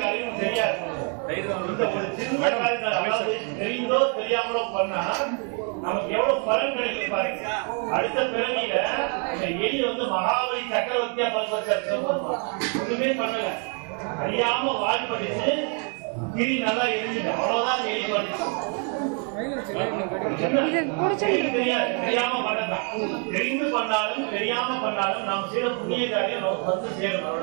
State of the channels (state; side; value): quieter; left; 39.5 dB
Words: காரியம் தெரியாது. ஒரு சின்ன காரியத்தை அதாவது தெரிந்தோ தெரியாமலோ பண்ணா நமக்கு எவ்வளவு பலன் கிடைக்கும் பாருங்க. அடுத்த பிறவியில இந்த எலி வந்து மகாபலி சக்கரவர்த்தியா ஒண்ணுமே பண்ணல, அறியாம வால் படிச்சு கிரி நல்லா எரிஞ்சுட்டு அவ்வளவுதான் எலி பண்ணிச்சு. தெரியாம பண்ணதான். தெரிந்து பண்ணாலும் தெரியாம பண்ணாலும் நாம் செய்த புண்ணிய காரியம் நமக்கு வந்து சேரும்.